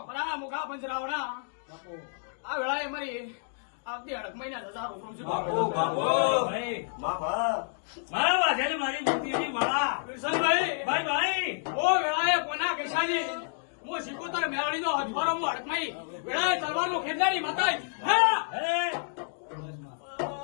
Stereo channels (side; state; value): right; silent; digital silence